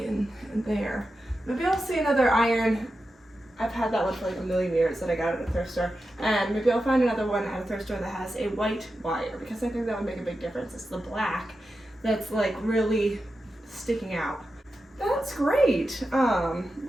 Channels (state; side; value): normal; both; correlation 0.90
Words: there. Maybe I'll see another iron. I've had that one for like a million years that I got at a thrift store, and maybe I'll find another one at a thrift store that has a white wire, because I think that would make a big difference. It's the black that's like really sticking out. That's great.